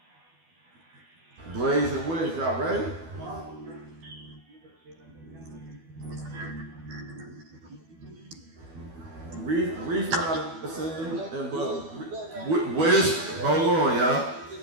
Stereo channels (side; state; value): left; late; 12 ms